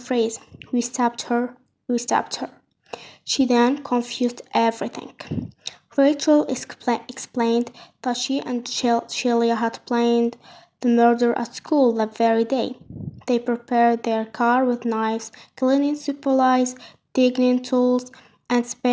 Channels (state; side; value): identical; both; correlation 1.00